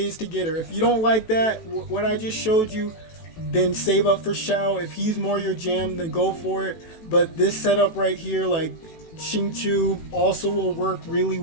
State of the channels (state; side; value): late; right; 18 ms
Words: to get her. If you don't like that, what I just showed you, then save up for Shao. If he's more your jam, then go for it. But this setup right here, like Xingqiu, also will work really